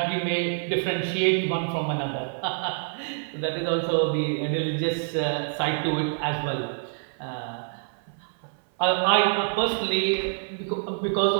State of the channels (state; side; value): silent; left; 57 dB below the other